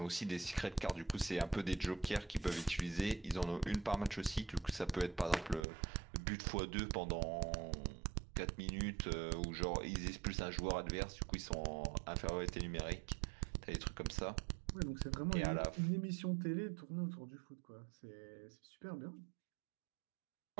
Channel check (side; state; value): left; drops out; at 5.7 s